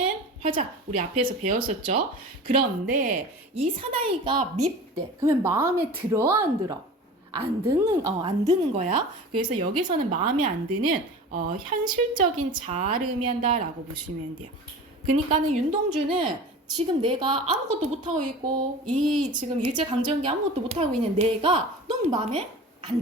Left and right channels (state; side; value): normal; both; correlation 0.36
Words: 화자. 우리 앞에서 배웠었죠. 그런데 이 사나이가 밉대. 그러면 마음에 들어 안 들어? 안 드는 거야. 그래서 여기서는 마음에 안 드는 현실적인 자아를 의미한다라고 보시면 돼요. 그러니까는 윤동주는 지금 내가 아무것도 못하고 있고 이 지금 일제강점기 아무것도 못하고 있는 내가 너무 마음에 안